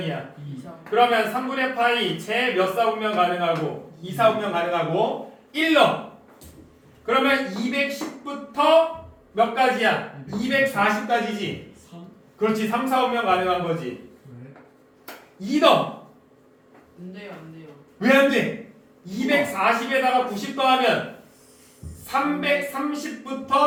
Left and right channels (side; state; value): both; identical; correlation 1.00